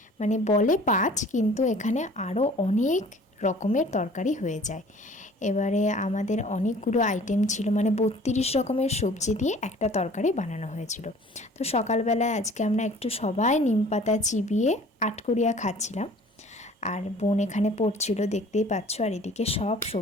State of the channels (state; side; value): normal; both; correlation 0.49